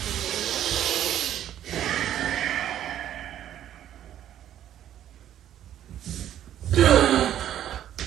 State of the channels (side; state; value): left; quieter; 11.2 dB